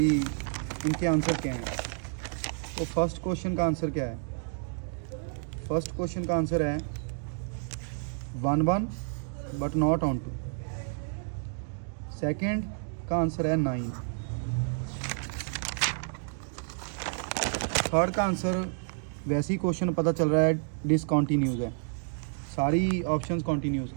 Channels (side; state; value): left; silent; 58 dB below the other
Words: इनके आंसर क्या हैं। तो फर्स्ट क्वेश्चन का आंसर क्या है? फर्स्ट क्वेश्चन का आंसर है 1 बट नॉट ऑन 2। सेकेंड का आंसर है 9। थर्ड का आंसर वैसे ही क्वेश्चन पता चल रहा है डिसकॉन्टीन्यूज़ है, सारी ऑप्शंस कॉन्टीन्यूज़